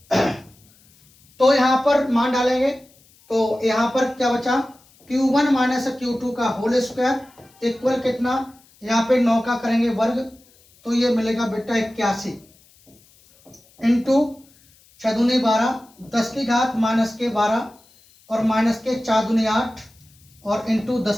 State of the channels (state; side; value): noise; left; hiss, 30 dB below the sound